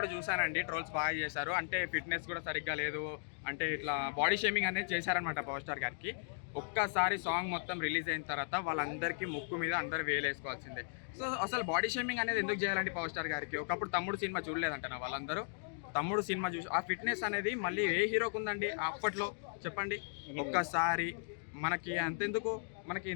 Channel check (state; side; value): silent; right; digital silence